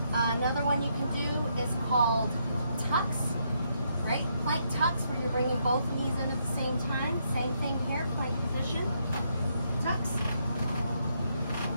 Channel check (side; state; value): both; inverted; correlation -0.76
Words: Another one you can do is called tucks, right? Plank tucks, where you're bringing both knees in at the same time. Same thing here, plank position, tucks.